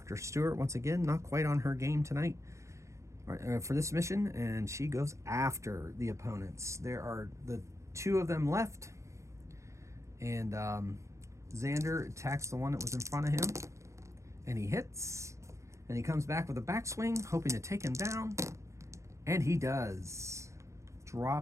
Stewart, once again, not quite on her game tonight for this mission, and she goes after the opponents. There are the two of them left, and Xander attacks the one that was in front of him, and he hits, and he comes back with a backswing, hoping to take him down, and he does.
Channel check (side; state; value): left; late; 0.14 ms